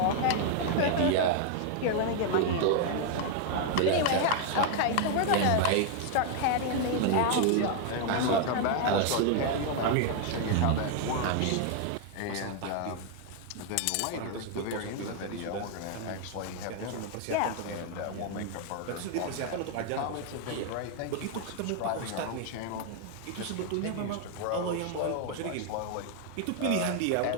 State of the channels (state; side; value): different; both; correlation 0.00